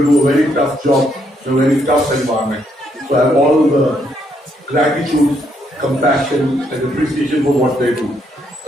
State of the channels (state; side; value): normal; both; correlation 0.74